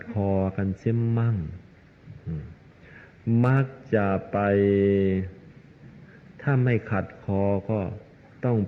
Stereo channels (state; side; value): identical; both; correlation 1.00